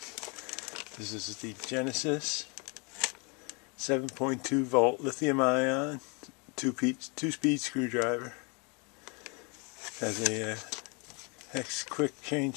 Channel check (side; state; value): right; quieter; 32.5 dB